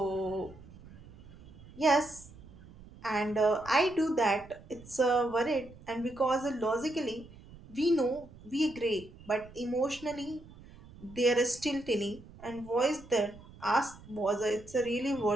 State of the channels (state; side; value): noise; right; rumble, 20 dB below the sound